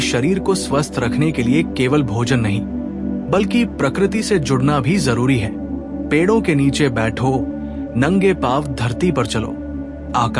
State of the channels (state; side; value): identical; both; correlation 1.00